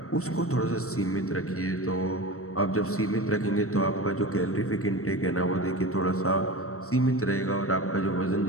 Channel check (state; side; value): late; right; 0.64 ms